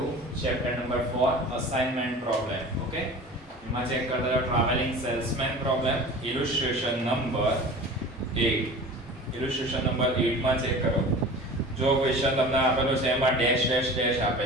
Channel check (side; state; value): both; normal; correlation 0.38